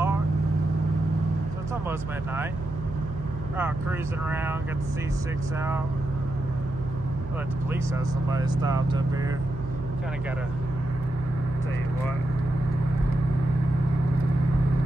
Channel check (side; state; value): right; noise; hum, 10 dB below the sound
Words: So it's almost midnight. We're out cruising around, got the C6 out. I let the police have somebody stopped up here. Kind of gotta tell you what.